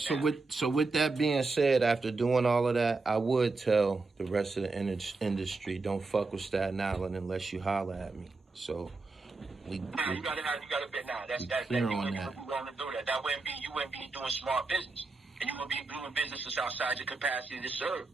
So with that being said, after doing all of that, I would tell the rest of the industry, don't fuck with Staten Island unless you holler at me. So you gotta bet now. That's you wouldn't be willing to do that. You wouldn't be doing smart business. And you wouldn't be doing businesses outside your capacity to serve.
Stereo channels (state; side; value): quieter; left; 3.7 dB